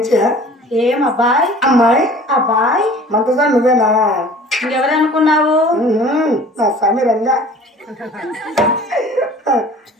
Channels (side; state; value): both; normal; correlation 0.46